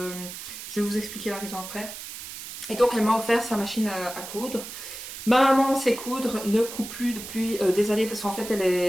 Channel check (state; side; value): noise; right; hiss, 10 dB below the sound